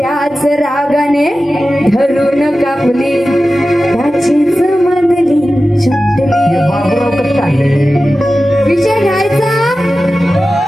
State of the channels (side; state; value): both; normal; correlation 0.94